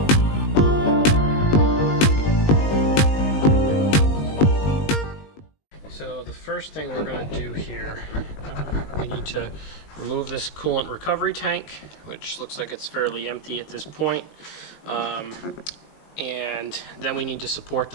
So the first thing we're going to do here, we need to remove this coolant recovery tank, which looks like it's fairly empty at this point. And then we need to support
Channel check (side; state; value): right; late; 19 ms